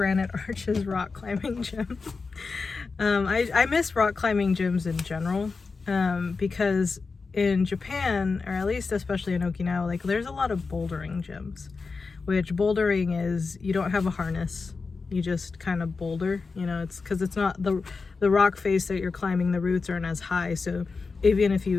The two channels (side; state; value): right; quieter; 4.5 dB